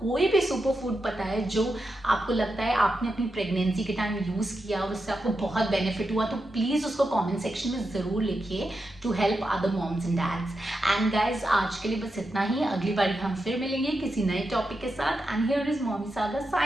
भी सुपर फूड पता है जो आपको लगता है आपने अपनी प्रेगनेंसी के टाइम यूज़ किया और उससे आपको बहुत बेनिफिट हुआ, तो प्लीज़ उसको कमेंट सेक्शन में ज़रूर लिखिए to help other moms and dads. And guys, आज के लिए बस इतना ही। अगली बार हम फिर मिलेंगे किसी नए टॉपिक के साथ। And here is mommy saga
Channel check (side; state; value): both; normal; correlation 0.88